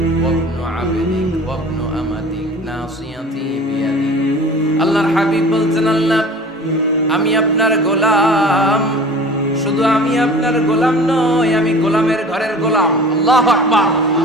ওয়া ইবনু আবদিক ওয়া ইবনু আমাতিক নাসিয়াতি বিয়াদিক। আল্লাহর হাবিব বলতেন, আল্লাহ আমি আপনার গোলাম, শুধু আমি আপনার গোলাম নই, আমি গোলামের ঘরের গোলাম। আল্লাহু আকবার।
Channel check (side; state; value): both; normal; correlation 0.42